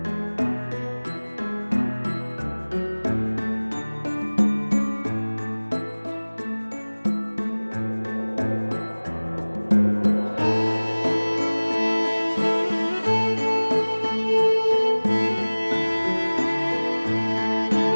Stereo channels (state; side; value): inverted; both; correlation -1.00